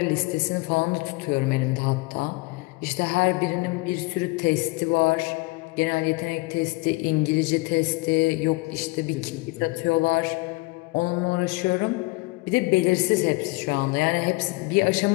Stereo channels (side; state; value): right; quieter; 24.6 dB